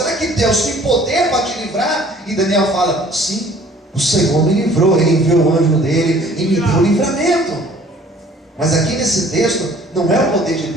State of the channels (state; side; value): normal; both; correlation 0.54